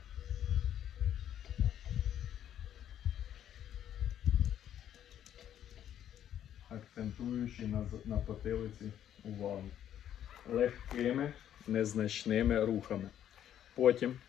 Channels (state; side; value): quieter; right; 10.5 dB